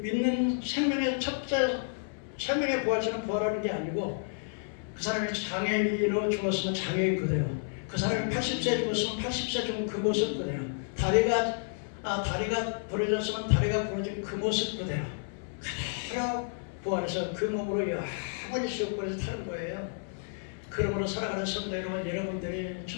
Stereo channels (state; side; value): silent; right; 57 dB below the other